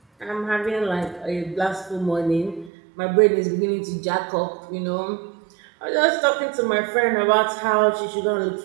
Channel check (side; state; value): left; drops out; at 2.7 s